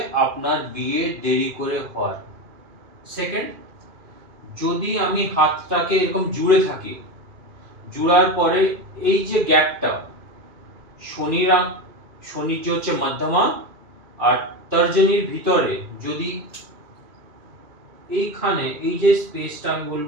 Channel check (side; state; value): left; late; 2.5 ms